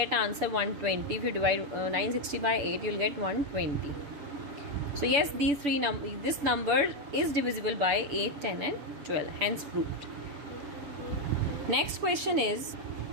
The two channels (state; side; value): late; left; 7.0 ms